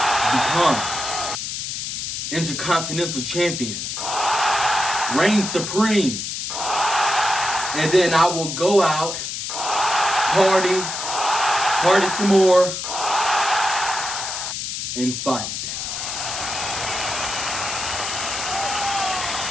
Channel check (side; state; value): left; noise; hiss, 4 dB below the sound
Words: become Intercontinental Champion, reign supreme, and then I will go out, party some more, and fight.